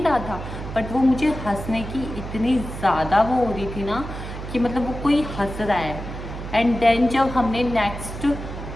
रहा था बट वो मुझे हंसने की इतनी ज़्यादा वो हो रही थी ना कि मतलब वो कोई हंस रहा है। एंड देन जब हमने नेक्स्ट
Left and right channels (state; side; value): noise; right; hum, 9 dB below the sound